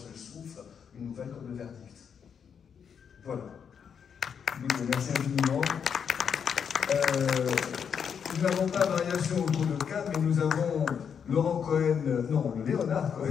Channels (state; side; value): quieter; right; 7.2 dB